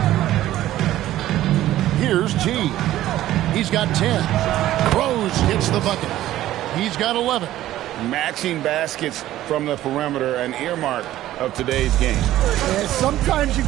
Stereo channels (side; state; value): left; quieter; 14.0 dB